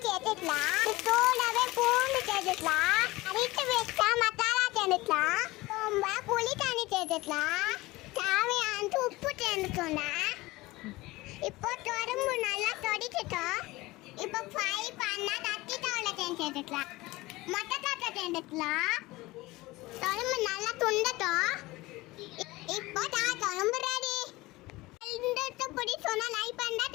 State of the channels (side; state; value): right; quieter; 20.3 dB